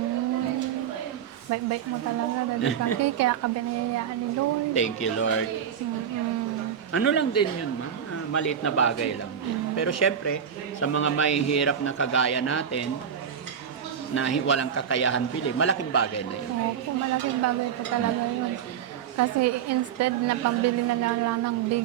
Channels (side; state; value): left; quieter; 8.4 dB